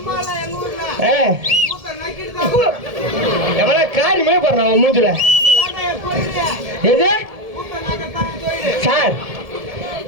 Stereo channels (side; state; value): left; late; 1.7 ms